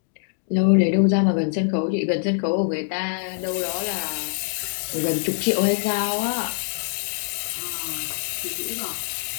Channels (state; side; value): silent; right; digital silence